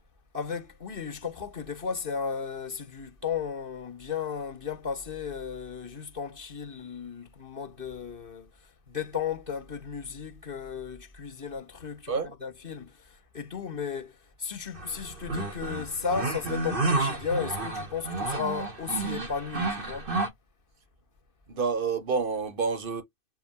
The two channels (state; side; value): late; left; 2.5 ms